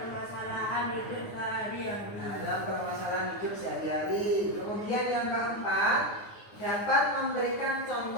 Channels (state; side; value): late; right; 9.6 ms